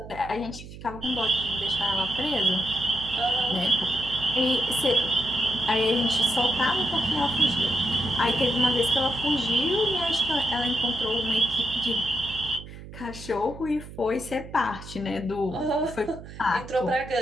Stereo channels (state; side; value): noise; right; hum, 14 dB below the sound